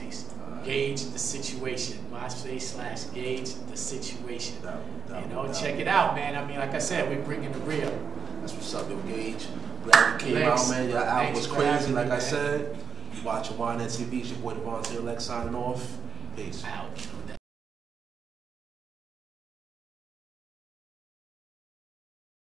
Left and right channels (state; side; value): quieter; left; 6.2 dB